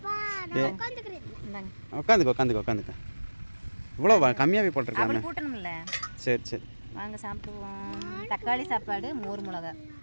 உட்காந்துக்க. இவ்வளோ கம்மியாகவே போட்டிருக்காங்க. கூட்டணும்ல. சரி வாங்க சாப்பிடுவோம். தக்காளி சாப்பாடு, மோர் மிளகா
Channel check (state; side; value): inverted; both; correlation -1.00